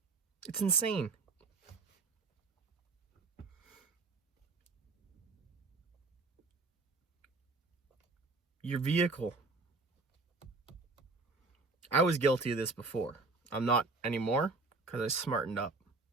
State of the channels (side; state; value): left; quieter; 3.6 dB